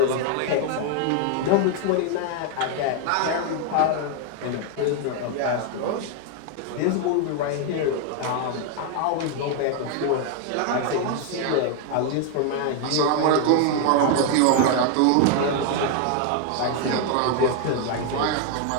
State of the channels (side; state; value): both; different; correlation 0.01